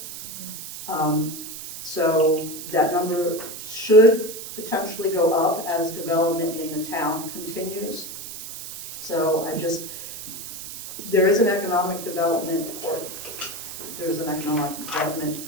So that number should potentially go up as development in the town continues. So there is an economic development, or there's an economic development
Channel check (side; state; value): right; noise; hiss, 10 dB below the sound